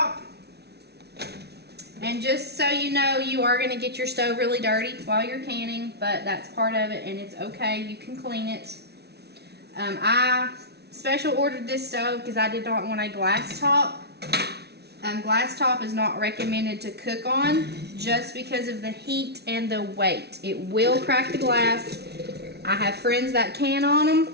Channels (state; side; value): late; left; 0.48 ms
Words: And just so you know, you are going to get your stove really dirty while you're canning, but that's part of it and it's okay. You can clean it. I special ordered this stove because I did not want a glass top. Glass top is not recommended to cook on just because of the heat and the weight. It will crack the glass. I have friends that can on them